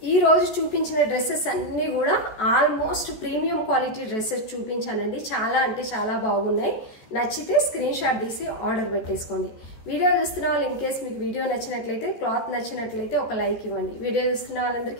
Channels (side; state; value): right; late; 14 ms